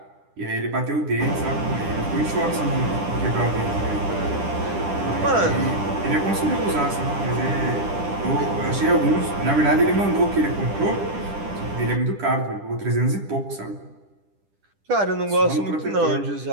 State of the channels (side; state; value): left; late; 10 ms